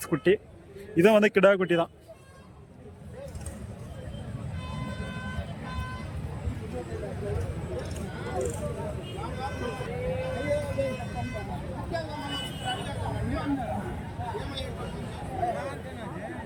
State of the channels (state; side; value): identical; both; correlation 1.00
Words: குட்டி. இதை வந்து கிடா குட்டி தான்.